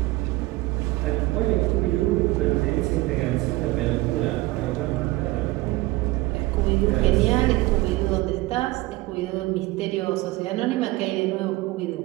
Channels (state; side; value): quieter; left; 20.0 dB